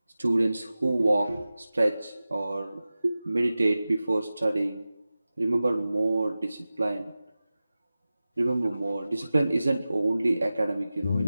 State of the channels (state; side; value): inverted; both; correlation -0.95